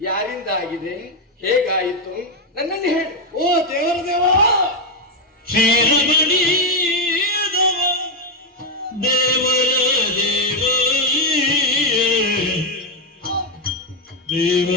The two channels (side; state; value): both; normal; correlation 0.05